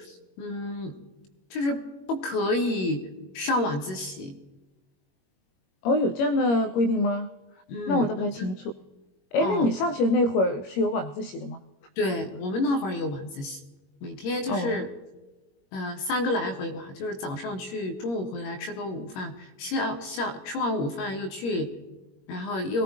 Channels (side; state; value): right; late; 21 ms